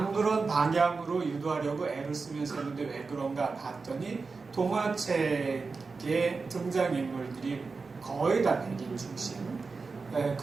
그런 방향으로 유도하려고 애를 쓰면서 했는데 왜 그런가 봤더니 동화책의 등장인물들이 거의 다 백인 중심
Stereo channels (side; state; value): left; quieter; 4.4 dB